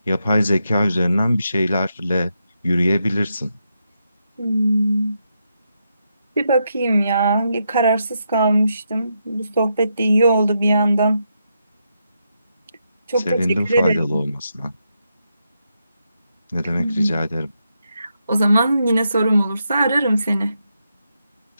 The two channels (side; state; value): both; inverted; correlation -0.82